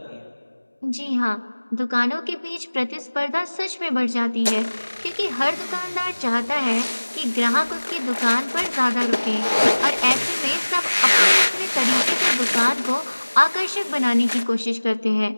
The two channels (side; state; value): both; inverted; correlation -1.00